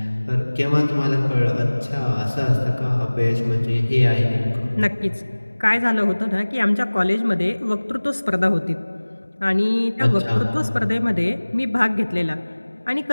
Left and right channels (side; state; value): both; inverted; correlation -1.00